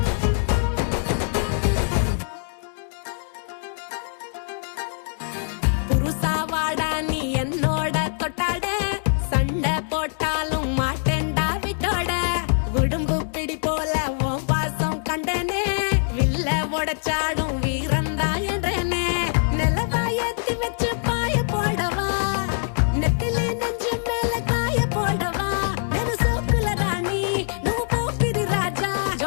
புருசா வாடா நீ என்னோட தொட்டாட சண்டை போட்டாலும் மாட்டேன்டா விட்டோட உடும்பு பிடி போல உன் பாசம் கண்டனே வில்ல உடைச்சாடும் வீரந்தா என்றனே நிலவா ஏத்தி வச்சு பாய போடவா நெத்திலே நெஞ்சு மேல காய போடவா నేను సోకుల రాణి నువ్వు పోకిరి రాజా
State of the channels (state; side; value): silent; right; digital silence